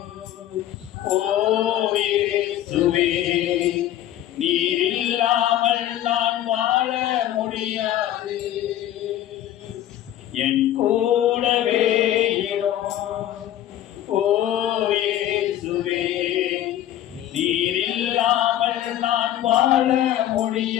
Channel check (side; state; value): right; quieter; 12.4 dB